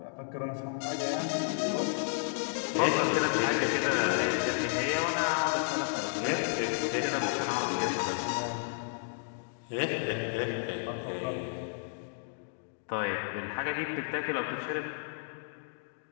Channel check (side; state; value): right; silent; digital silence